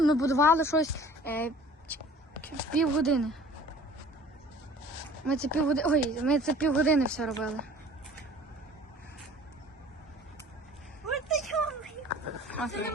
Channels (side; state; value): both; normal; correlation 0.48